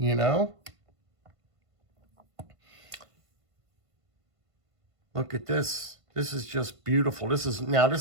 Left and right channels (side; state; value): left; late; 1.5 ms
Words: know? Look at this. This is just beautiful. This is